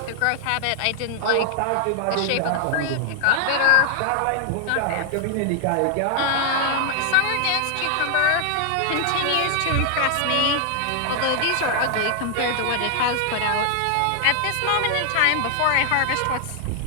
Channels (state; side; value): different; both; correlation 0.00